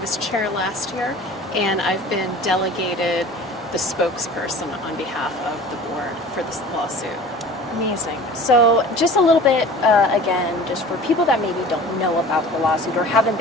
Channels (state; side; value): normal; both; correlation 0.42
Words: chair last year, and I've been delegated the spokesperson on behalf of the board for this lawsuit. Amazing. So just a little bit, again, just for people that maybe don't know about the lawsuit or haven't